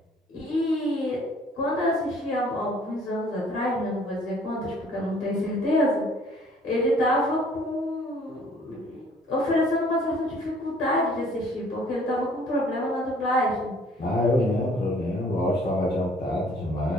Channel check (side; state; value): both; normal; correlation 0.57